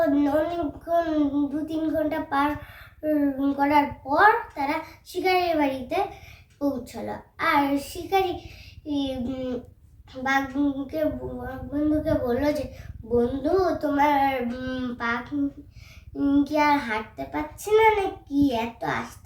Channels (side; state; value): both; identical; correlation 1.00